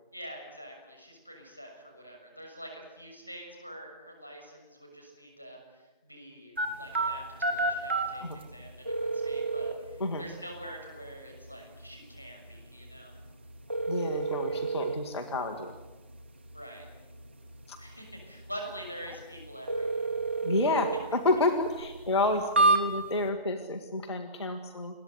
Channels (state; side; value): inverted; both; correlation -0.33